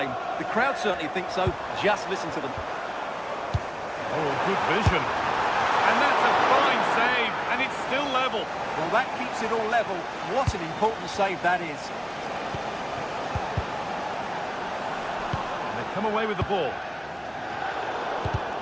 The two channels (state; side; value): identical; both; correlation 1.00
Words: The crowd certainly think so. Just listen to them. Oh, good vision. And that's a fine save, and it's still level. Well, that keeps it all level. What an important save that is. And they've come away with the ball.